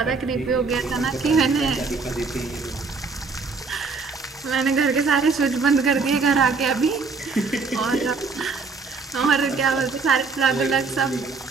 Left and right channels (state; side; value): quieter; left; 4.4 dB